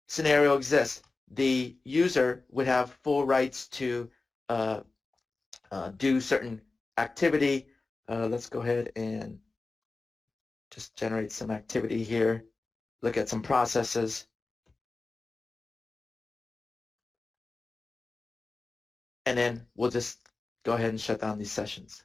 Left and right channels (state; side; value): quieter; right; 3.6 dB